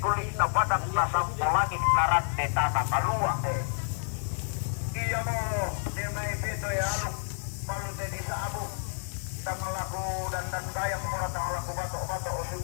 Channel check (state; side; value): silent; right; 58 dB below the other